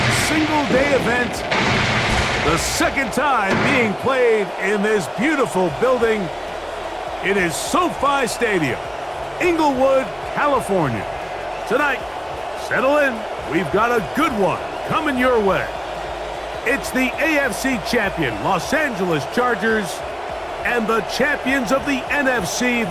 single-day event. The second time being played in this beautiful building. It is SoFi Stadium, Inglewood, California. Tonight, settle in. We've got a good one coming your way. It's the AFC champion, Los Angeles Chargers, and the champions of the NFC,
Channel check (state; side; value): identical; both; correlation 1.00